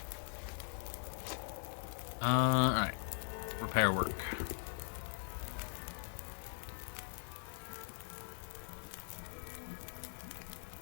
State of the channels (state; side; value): silent; right; 50 dB below the other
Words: Alright. Repair work.